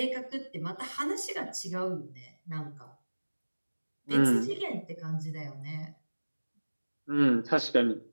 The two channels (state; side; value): inverted; both; correlation -1.00